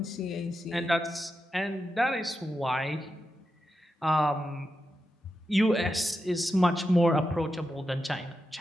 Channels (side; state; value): both; normal; correlation 0.88